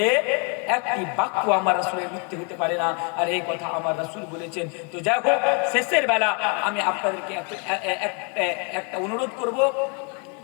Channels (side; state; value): right; quieter; 36.3 dB